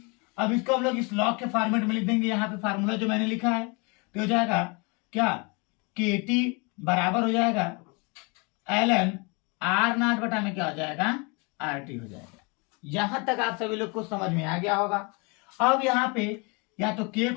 अब इसको हम लोग इस लॉग के फॉर्मेट में लिख देंगे। यहाँ पे फार्मूला जो मैंने लिखा है तो हो जाएगा क्या, के टी बराबर हो जाएगा ln आर नॉट बटा में क्या हो जाएगा, आर टी हो जाएगा। यहां तक आप सभी लोग को समझ में आ गया होगा। अब यहाँ पे या तो k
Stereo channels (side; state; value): right; quieter; 30.4 dB